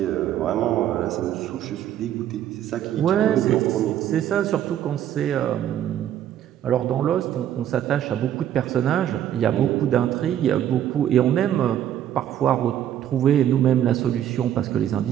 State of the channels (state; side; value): quieter; left; 10.9 dB